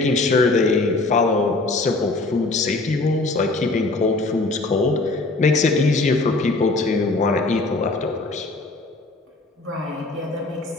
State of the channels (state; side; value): quieter; right; 3.2 dB